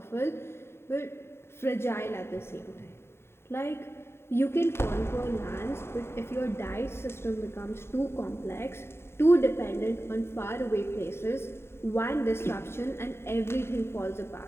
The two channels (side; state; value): right; late; 0.12 ms